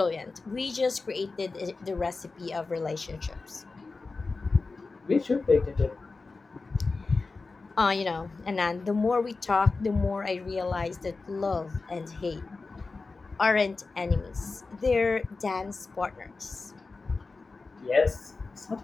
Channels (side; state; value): right; quieter; 3.9 dB